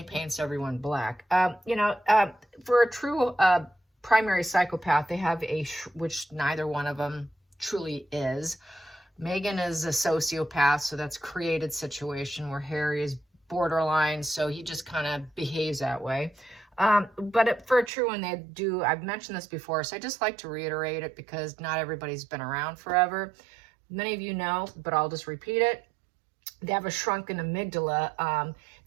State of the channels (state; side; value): drops out; left; at 17.9 s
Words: paints everyone black. For a true primary psychopath, they have which neither one of them truly is. Meghan is a sociopath, so that's created situation where Harry is borderline, so he just kind of behaves that way. For a true one, they do, I've mentioned this before, so I just like to reiterate it because not everybody's been around forever. Many of you know, but I'll just repeat it. They have a shrunken amygdala